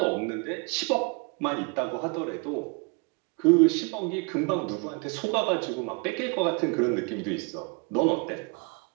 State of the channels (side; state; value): left; quieter; 32.5 dB